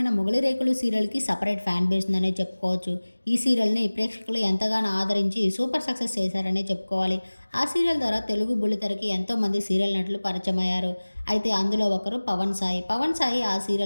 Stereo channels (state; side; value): inverted; both; correlation -1.00